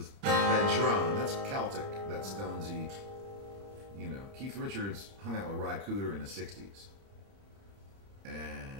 that drone. That's Celtic. That's Stonesy. Keith Richards hung out with Ry Cooder in the 60s.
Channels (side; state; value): left; late; 30 ms